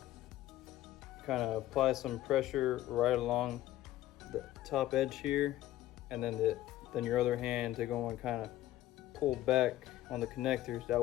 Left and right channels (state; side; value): quieter; right; 14.3 dB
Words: kind of apply some pressure right along the top edge here, and then your other hand to go and kind of pull back on the connectors. That